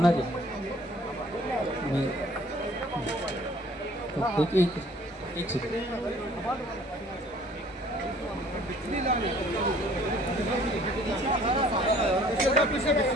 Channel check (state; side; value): normal; both; correlation 0.55